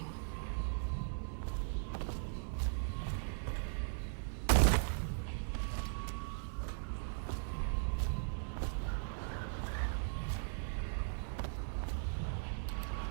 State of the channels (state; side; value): silent; left; 52 dB below the other